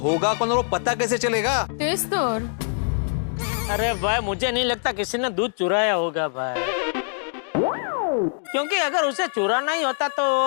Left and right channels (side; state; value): right; silent; digital silence